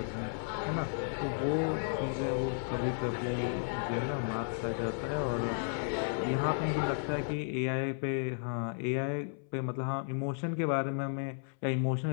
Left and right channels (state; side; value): silent; right; 55 dB below the other